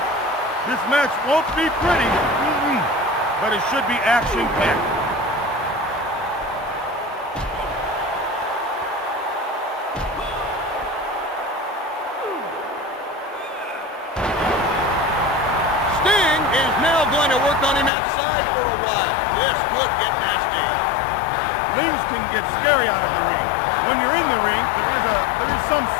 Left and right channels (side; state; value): right; drops out; at 17.9 s